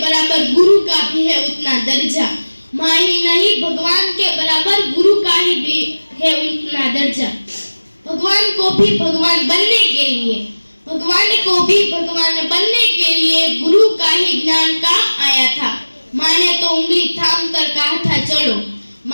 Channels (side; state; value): both; inverted; correlation -1.00